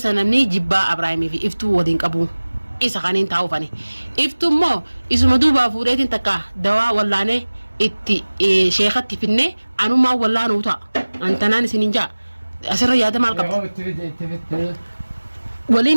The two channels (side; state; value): both; inverted; correlation -1.00